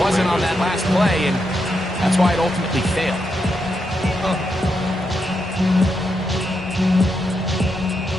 on that last play, and that's why it ultimately failed.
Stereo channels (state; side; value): normal; both; correlation 0.83